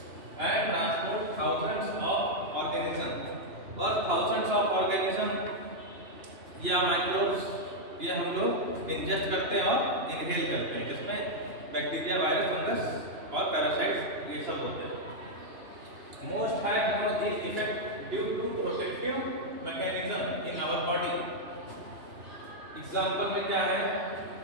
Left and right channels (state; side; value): late; left; 2.9 ms